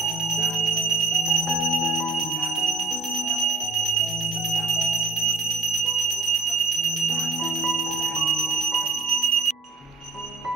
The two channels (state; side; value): quieter; left; 3.6 dB